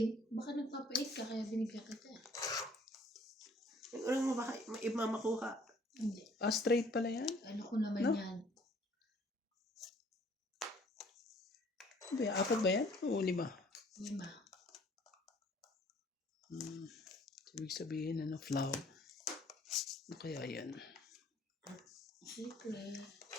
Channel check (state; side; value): normal; both; correlation 0.58